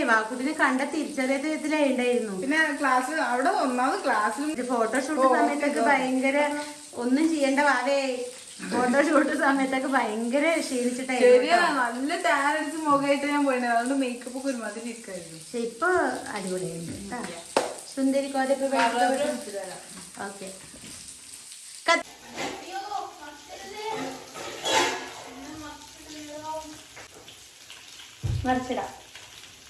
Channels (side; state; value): both; identical; correlation 1.00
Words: വാക്കുട്ടിനെ കണ്ട തിരിച്ചറിയത്തിലേ ഉണ്ടായിരുന്നു. പിന്നെ ക്ലാസ് അവിടെ ഒന്നാമത് ക്ലാസ്സിൽ ഫോട്ടോഷൂട്ട് സമയത്തൊക്കെ ഭയങ്കര ഒന്നും ചെയ്യേണ്ട വാവേ. ഫോട്ടോഷൂട്ട് സമയത്തൊക്കെ ഭയങ്കര ക്ഷീണിച്ചിട്ടായിരുന്നു. നല്ല ടാൻ അടിച്ച് മുഖമായിട്ട് ഞാൻ പോയിട്ടുണ്ട്. അതുകൊണ്ട് മേക്കപ്പ് ഒക്കെ ഒരുമാതിരി ഇരിക്കായിരുന്നു. പക്ഷെ ഇപ്പൊ അടിപൊളിയായിരുന്നു. സുന്ദരി കോതൊക്കെ ഓക്കെ. മറിച്ചിടാം.